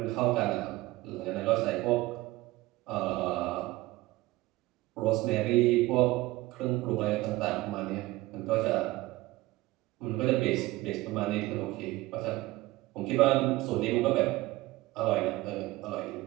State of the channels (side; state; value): left; quieter; 19.0 dB